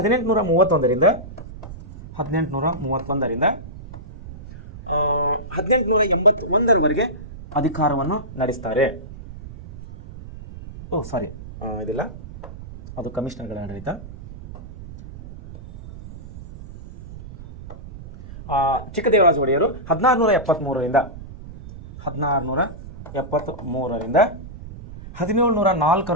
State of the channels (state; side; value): noise; right; rumble, 14 dB below the sound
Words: 1881ರವರೆಗೆ ಅಧಿಕಾರವನ್ನು ನಡೆಸ್ತಾರೆ. ಇದಿಲ್ಲ, ಅದು ಕಮಿಷನರ್ಗಳ ಆಡಳಿತ. ಚಿಕ್ಕದೇವರಾಜ ಒಡೆಯರು 1673ರಿಂದ